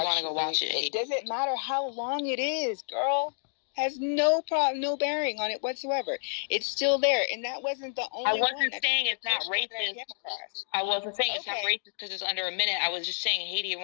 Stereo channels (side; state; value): right; silent; digital silence